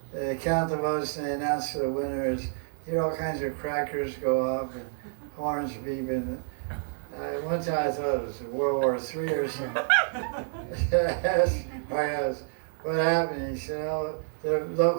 They count the votes and they announce the winners. You hear all kinds of crackers go off and horns beeping. One time I thought it was World War III or something. I asked, what happened? He said, oh, the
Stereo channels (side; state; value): left; silent; digital silence